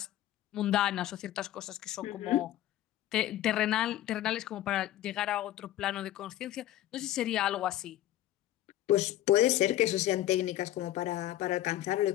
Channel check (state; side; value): quieter; right; 13.5 dB